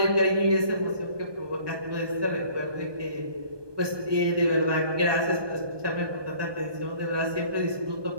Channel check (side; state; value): left; late; 1.2 ms